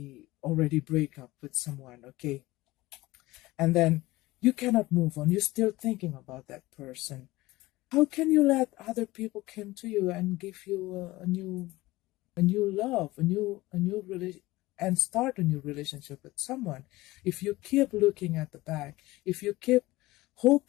already break up with someone. Okay. And then you cannot move on. You're still thinking about that person. How can you let other people come to you and give you a new love, a new relation, and start a new relationship with someone? If you keep looking at the back, if you keep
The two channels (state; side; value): quieter; right; 19.1 dB